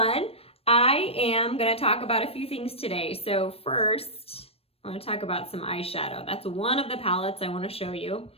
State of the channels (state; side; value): late; right; 0.28 ms